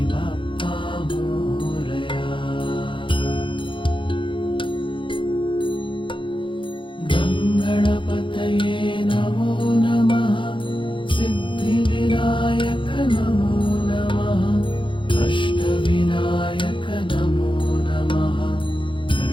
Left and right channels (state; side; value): late; right; 0.24 ms